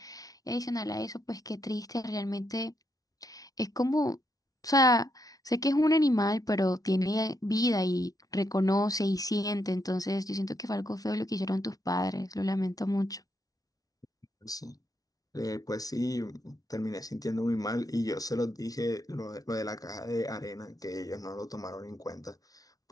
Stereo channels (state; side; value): late; right; 0.18 ms